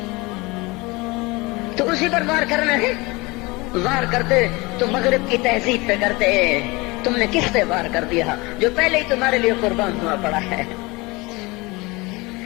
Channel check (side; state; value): right; quieter; 24.2 dB